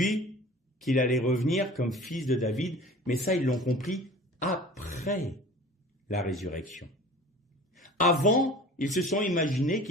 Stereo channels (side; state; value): both; normal; correlation 0.41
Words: qu'il allait revenir comme fils de David, mais ça ils l'ont compris après la résurrection. Avant, ils se sont imaginés